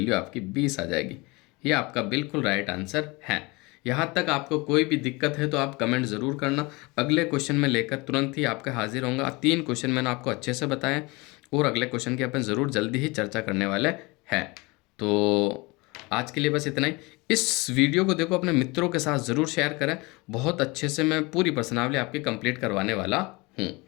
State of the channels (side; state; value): right; quieter; 25.1 dB